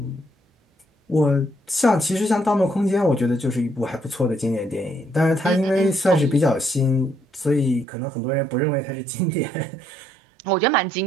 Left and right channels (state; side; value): drops out; left; at 7.9 s